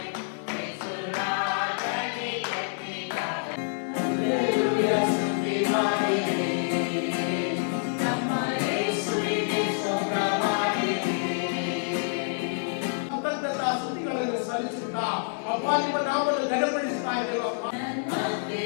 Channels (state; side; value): silent; right; digital silence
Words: ಸಲ್ಲಿಸುತ್ತಾ ಅಪ್ಪ ನಿಮ್ಮ ನಾಮವನ್ನು ಘನಪಡಿಸ್ತಾ ಇದ್ದೇವೆ.